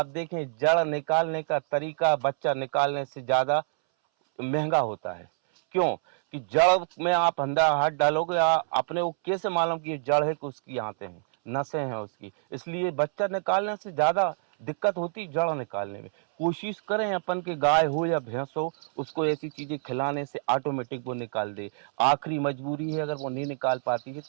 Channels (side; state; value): left; silent; 60 dB below the other